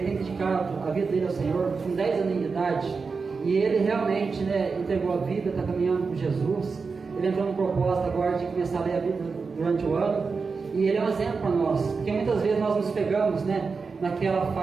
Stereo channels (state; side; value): quieter; left; 4.8 dB